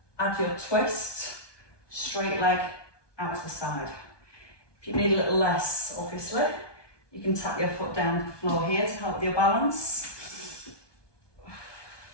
Add your twist, straight leg out to the side. If you need a little less, obviously, you can tap your foot down to the floor here to help with your balance.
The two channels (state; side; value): late; right; 1.2 ms